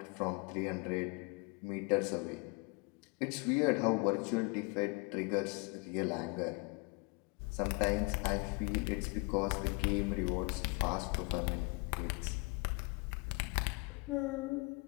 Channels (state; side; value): quieter; right; 31.1 dB